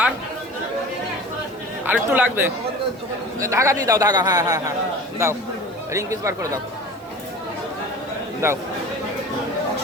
আর আর একটু লাগবে, ধাগা দিয়ে দাও, ধাগা, হ্যাঁ হ্যাঁ হ্যাঁ দাও, রিং পিস বার করে দাও, দাও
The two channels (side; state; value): right; noise; hiss, 29 dB below the sound